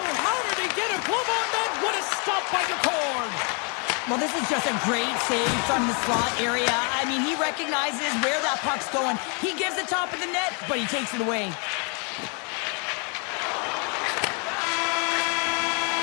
how did he get a glove on that? What a stop by Decord. Well, this is just a great save from the slot area. I mean, he recognizes where that puck's going. He gives the top of the net, but he takes it away.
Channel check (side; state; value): right; quieter; 36.4 dB